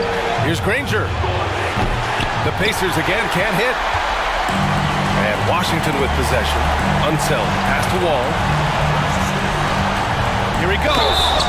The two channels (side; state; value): both; identical; correlation 1.00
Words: Here's Granger. The Pacers again can't hit. And Washington with possession. Unseld. Pass to Wall. Here he goes.